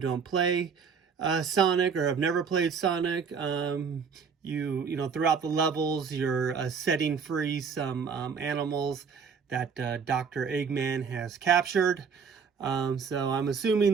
play Sonic or have never played Sonic, you know, throughout the levels, you're setting free some animals that Dr. Eggman has captured. So I'm assuming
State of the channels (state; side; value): quieter; left; 6.0 dB